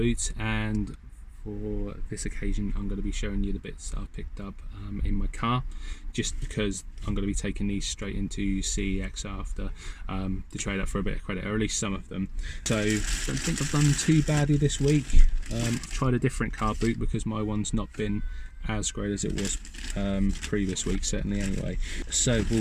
and for this occasion I'm going to be showing you the bits I've picked up in my car, just because I'm going to be taking these straight into CEX after to trade up for a bit of credit, or at least some of them. So I don't think I've done too badly this week. I've tried a different car boot because my one's not been as great as it was previous week, certainly anyway. So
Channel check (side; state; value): both; identical; correlation 1.00